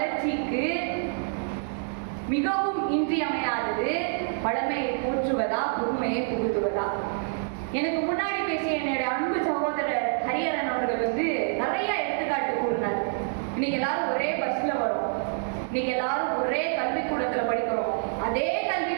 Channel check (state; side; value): silent; left; digital silence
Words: மிகவும் இன்றியமையாதது பழமையை போற்றுவதா, புதுமையை புகுத்துவதா? எனக்கு முன்னாடி பேசிய என்னுடைய அன்பு சகோதரர் ஹரிஹரன் அவர்கள் நிறைய எடுத்துக்காட்டு கூறினார். இன்னைக்கு எல்லாரும் ஒரே பஸ்ல வரும், இன்னைக்கு எல்லாரும் ஒரே கல்விக்கூடத்துல படிக்கிறோம். அதே